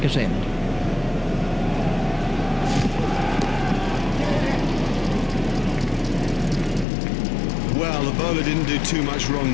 end. Well, the bowler didn't do too much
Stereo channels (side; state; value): right; drops out; at 6.9 s